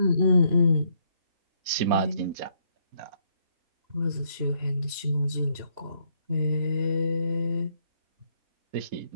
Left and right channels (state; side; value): late; left; 3.0 ms